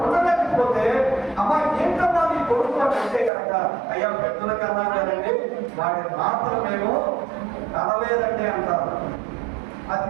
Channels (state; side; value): drops out; left; at 3.3 s